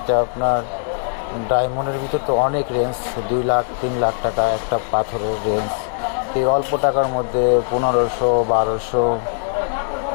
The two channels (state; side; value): silent; right; digital silence